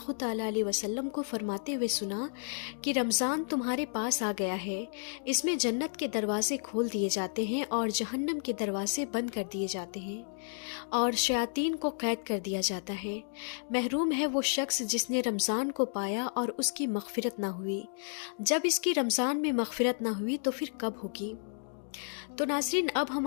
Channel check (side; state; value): right; silent; digital silence